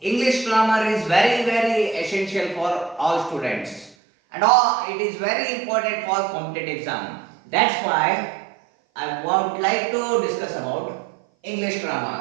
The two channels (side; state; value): left; drops out; at 4.0 s